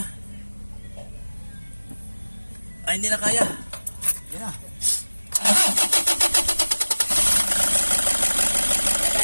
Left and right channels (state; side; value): inverted; both; correlation -1.00